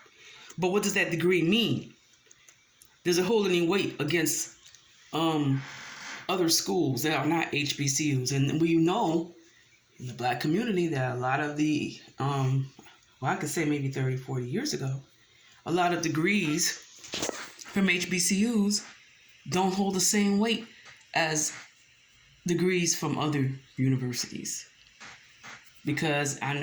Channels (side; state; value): both; identical; correlation 1.00